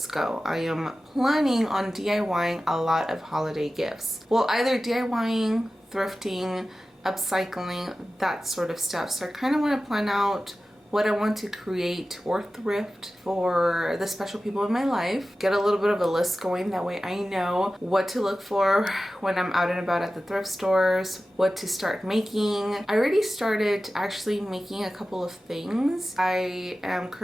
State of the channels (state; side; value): normal; both; correlation 0.95